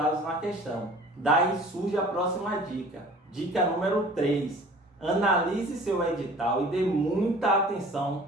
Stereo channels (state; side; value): normal; both; correlation 0.47